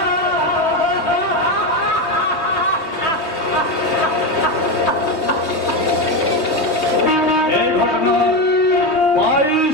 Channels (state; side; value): late; right; 3.2 ms